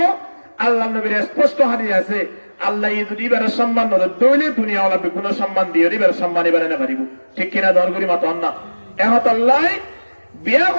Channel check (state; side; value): inverted; both; correlation -1.00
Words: আল্লাহ নবীর স্পষ্ট হাদিস আছে আল্লাহ যদি এবার সম্মান দইলে দুনিয়া ওলাবে কোন সম্মান দিয়ে এবার সম্মান এবারে না পারিব ঠিক কিনা দর করি মত না এখন আল্লাহ বিয়া